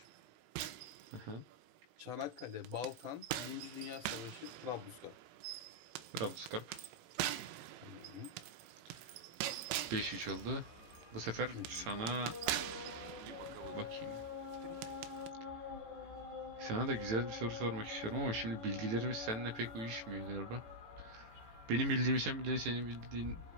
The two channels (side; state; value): left; late; 18 ms